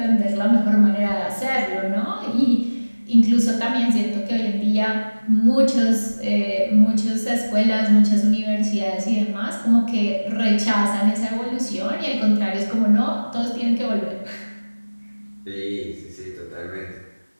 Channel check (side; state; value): both; inverted; correlation -1.00